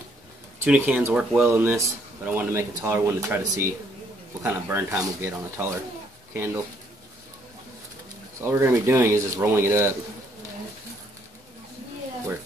Tuna cans work well in this, but I wanted to make a taller one to try to see what kind of burn time we'll get on a taller candle. So all we're going to be doing is just rolling it up where it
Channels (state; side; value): normal; both; correlation 0.68